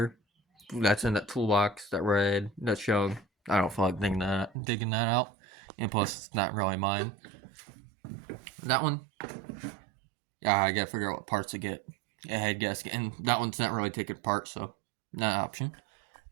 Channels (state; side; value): drops out; left; at 4.5 s